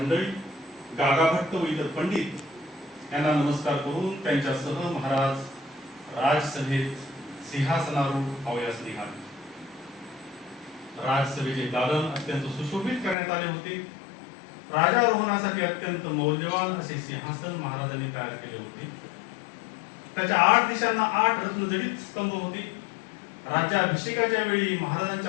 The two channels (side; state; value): right; drops out; at 13.2 s